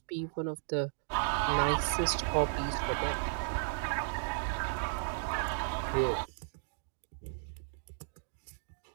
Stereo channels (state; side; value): silent; left; digital silence